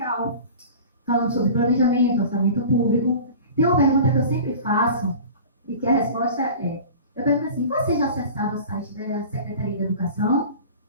falando sobre planejamento, orçamento público. Tem uma pergunta que eu sempre faço, e que a resposta é, eu pergunto assim, você já acessaram o site da Secretaria da Educação?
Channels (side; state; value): both; inverted; correlation -0.39